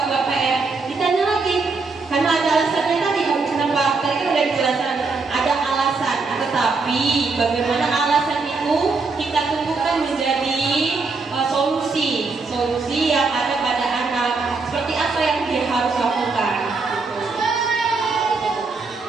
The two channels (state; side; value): quieter; left; 4.1 dB